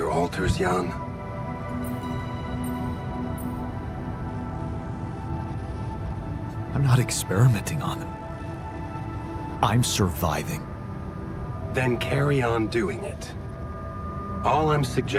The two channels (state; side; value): identical; both; correlation 1.00